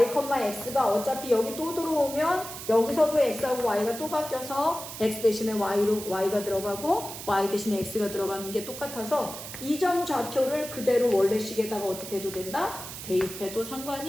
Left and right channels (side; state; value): right; noise; hiss, 10 dB below the sound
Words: x가 어차피 여기 또 들어오면 여기서도 x하고 y가 또 바뀌어서 x 대신에 y가 들어가고 y 대신에 x가 들어가는 게 똑같아서 이 점 좌표를 그대로 원래 식에다가 어떻게 해도 된다? 대입해도